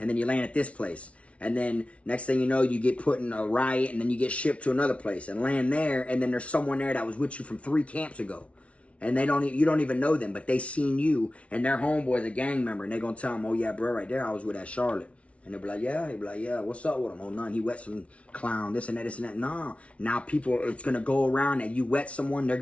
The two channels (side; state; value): right; late; 0.063 ms